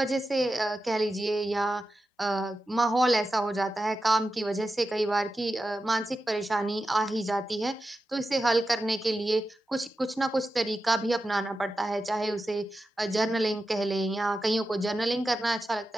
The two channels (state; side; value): normal; both; correlation 0.91